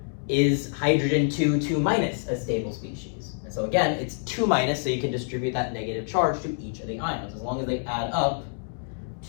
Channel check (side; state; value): right; silent; digital silence